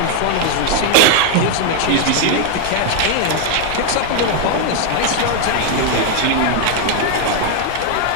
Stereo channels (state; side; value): different; both; correlation 0.00